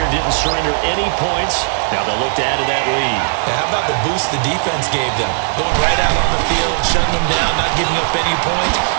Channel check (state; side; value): silent; left; digital silence